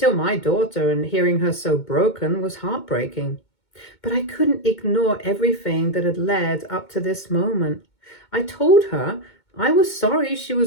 my daughter, and hearing her so broken was heartbreaking. But I couldn't ignore everything that had led up to this moment. I told her I was sorry she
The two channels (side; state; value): right; late; 2.2 ms